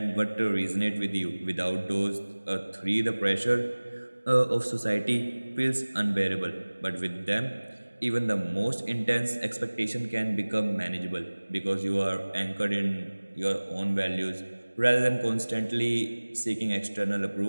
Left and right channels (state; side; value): inverted; both; correlation -1.00